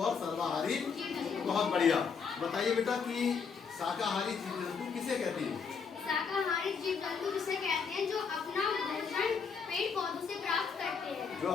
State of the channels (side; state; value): right; quieter; 5.8 dB